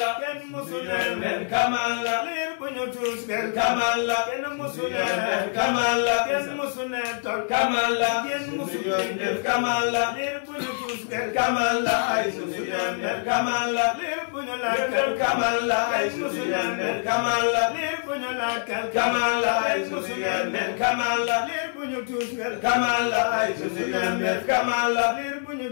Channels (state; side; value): silent; right; digital silence